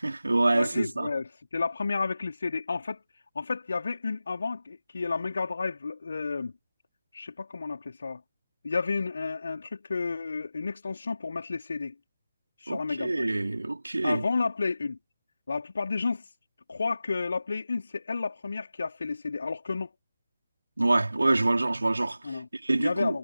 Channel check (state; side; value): inverted; both; correlation -0.94